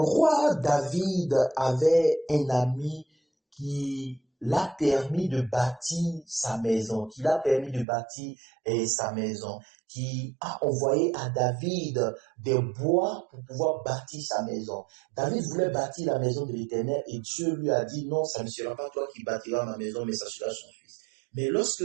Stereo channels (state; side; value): drops out; left; at 7.9 s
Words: David avait un ami qui l'a permis de bâtir sa maison, qui a envoyé à David des bois pour pouvoir bâtir sa maison. David voulait bâtir la maison de l'Éternel et Dieu lui a dit non, ça ne sera pas toi qui bâtiras ma maison, mais ça sera son fils. Mais